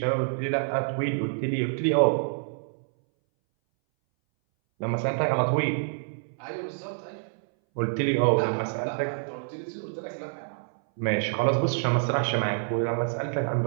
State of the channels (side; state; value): left; silent; 60 dB below the other